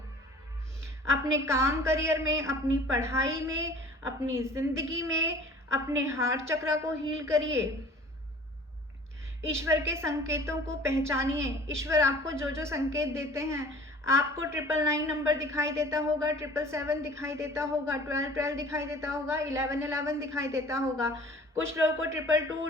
अपने काम करियर में, अपनी पढ़ाई में, अपनी ज़िंदगी में, अपने हार्ट चक्र को हील करिए। ईश्वर के संकेतों को पहचानिए। ईश्वर आपको जो जो संकेत देते हैं, आपको 999 नंबर दिखाई देता होगा, 777 दिखाई देता होगा, 1212 दिखाई देता होगा, 1111 दिखाई देता होगा, कुछ लोगों को 222,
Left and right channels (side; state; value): both; normal; correlation 0.47